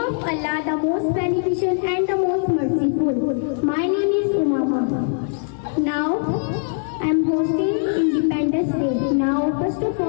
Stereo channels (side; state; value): right; silent; 65 dB below the other